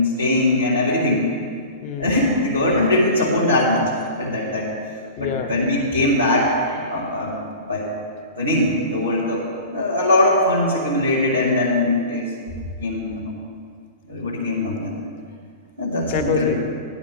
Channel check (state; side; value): inverted; both; correlation -0.38